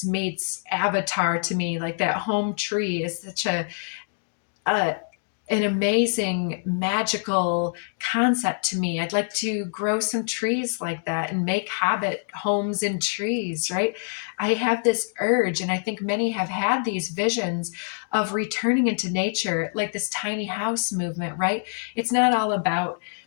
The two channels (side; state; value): right; silent; digital silence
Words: meets Avatar to me. Like, that home tree is such an amazing magical concept to me. I'd like to grow some trees like that and make hobbit homes in trees, right? I have this urge, and I think many have had these visions of returning into nature, like this tiny house movement, right? It's not all about